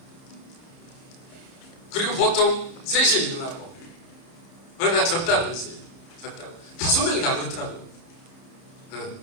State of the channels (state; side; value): late; right; 30 ms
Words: 그리고 보통 3시에 일어나고, 그러다 졌다고 했어요. 졌다고. 5명이 다 그렇더라고요.